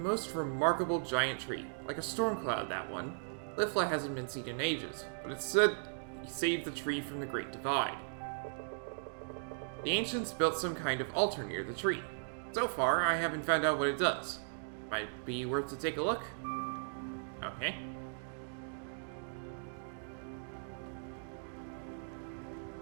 remarkable giant tree, like a storm cloud, that one. Lifla hasn't been seen in ages, but it's said he saved the tree from the Great Divide. The ancients built some kind of altar near the tree. So far, I haven't found out what it does. Might be worth to take a look. Okay.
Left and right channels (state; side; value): silent; left; digital silence